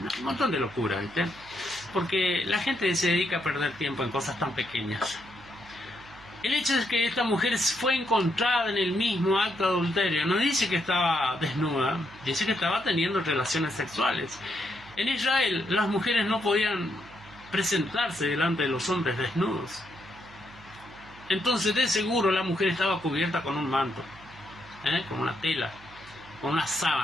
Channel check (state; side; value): noise; right; hum, 22 dB below the sound